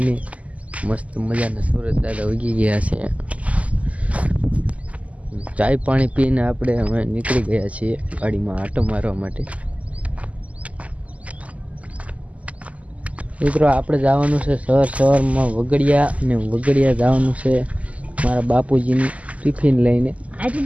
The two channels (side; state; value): left; late; 0.069 ms